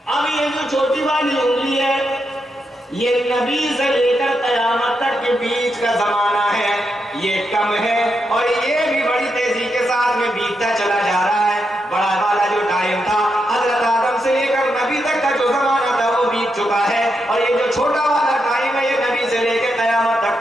اب یہ جو چھوٹی والی انگلی ہے یہ نبی سے لے کر قیامت تک کے بیچ کا زمانہ ہے, یہ کم ہے, اور یہ بھی بڑی تیزی کے ساتھ میں بیتتا چلا جا رہا ہے. بڑا والا جو ٹائم تھا حضرت آدم سے لے کر نبی تک کا جو زمانہ تھا وہ بیت چکا ہے, اور یہ جو چھوٹا والا ٹائم ہے یہ نبی سے لے کے قیامت تک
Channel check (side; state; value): both; normal; correlation 0.83